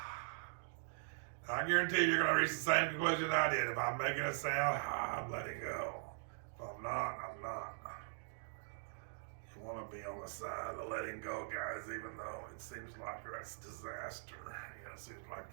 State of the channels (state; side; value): silent; left; digital silence